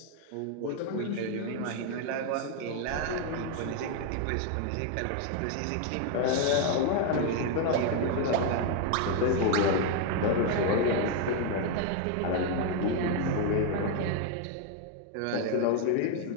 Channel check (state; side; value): different; both; correlation 0.00